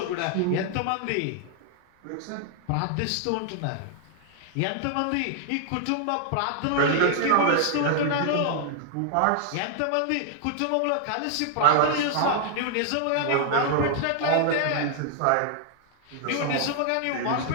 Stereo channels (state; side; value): different; both; correlation 0.00